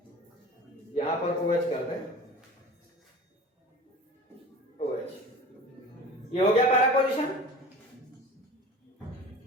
यहां पर OH कर दें, OH, ये हो गया पैरा पोजीशन।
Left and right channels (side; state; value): both; normal; correlation 0.38